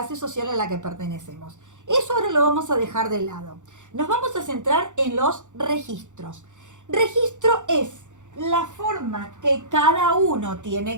social a la que pertenecemos. Eso ahora lo vamos a dejar de lado. Nos vamos a centrar en los registros. Registro es la forma que cada uno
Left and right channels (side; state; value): left; late; 0.85 ms